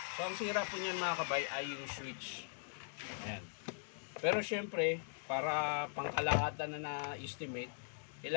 So ang sira po niyan mga kabay ay yung switch. Ayan. Pero syempre, para pangkalahatan na na-estimate,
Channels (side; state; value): right; silent; digital silence